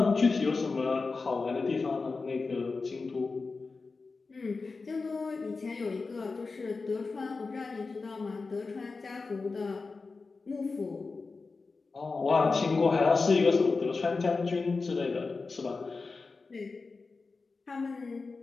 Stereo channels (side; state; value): right; quieter; 4.1 dB